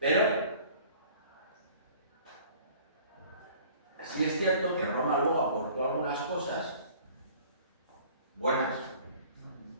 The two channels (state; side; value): inverted; both; correlation -0.50